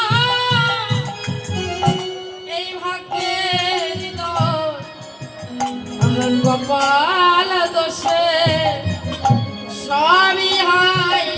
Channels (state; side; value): identical; both; correlation 1.00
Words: এই ভাগ্যের দোষ আমার কপাল দোষে সবই হয়